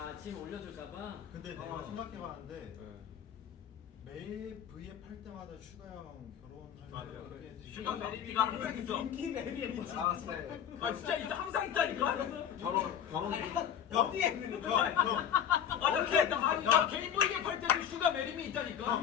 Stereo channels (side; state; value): right; quieter; 9.1 dB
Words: 지금 올려줄까봐. 근데 내가 생각해봤는데 매일 V앱 할 때마다 슈가 형 결혼할 때 슈가 메리미가 항상 있어. 인기 매력이 아 네. 아 진짜 있어 항상 있다니까. 결혼. 어디에 있는 거야? 나 개인 보이게 팔 때도 슈가 메리미 있다니까.